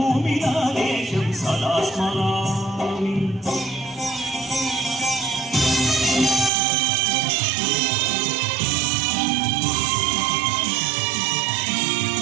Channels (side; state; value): left; drops out; at 6.5 s